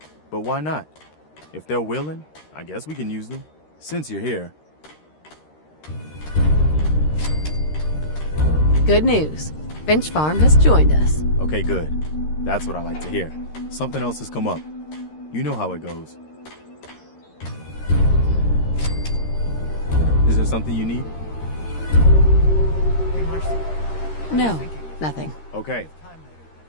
But why not? If they're willing, I guess we can use them. Since you're here. Good news. Finch Farm has joined us. Okay, good. That's what I like to hear. Something else has come up. You know how it goes. Is there something you need? No, nothing. Okay.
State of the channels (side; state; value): right; late; 13 ms